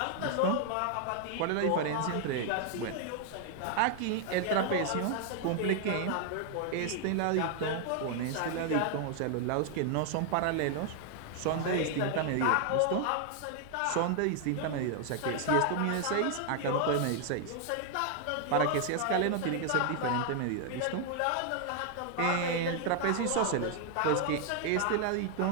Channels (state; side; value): different; both; correlation 0.00